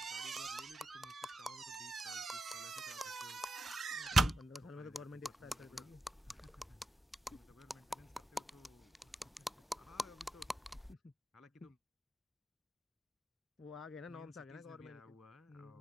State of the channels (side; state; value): both; normal; correlation 0.88